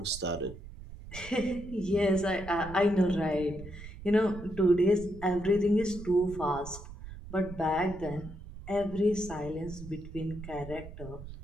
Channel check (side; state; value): right; noise; rumble, 13 dB below the sound